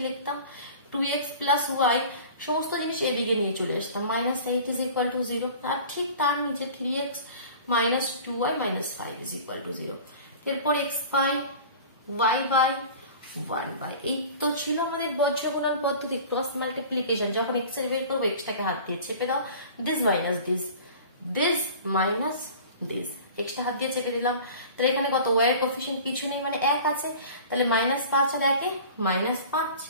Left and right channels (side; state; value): both; inverted; correlation -0.41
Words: লিখতাম, 2x plus y, সমস্ত জিনিস এদিকে নিয়ে চলে আসতাম, -8 is equal to 0, আর ঠিক তার নিচে 3x minus 2y minus 5 is equal to 0। এরপর x by y by 1/, এই তো ছিল আমাদের বজ্র গুণন পদ্ধতি, ক্রস মাল্টিপ্লিকেশন। যখন এক্স এর বের করবো এক্সটাকে হাত দিয়ে চেপে দাও, this minus this, this minus this, extra হাত দিয়ে চেপে দিলাম। তাহলে এখানে কত, ওয়াই এর কোএফিসিয়েন্ট কিছু নেই মানে 1 আছে, তাহলে -5 আর 1 -5